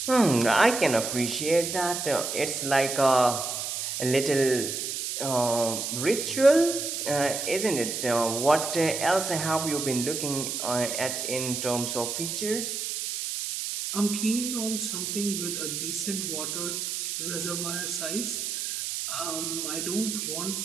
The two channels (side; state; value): right; noise; hiss, 3 dB below the sound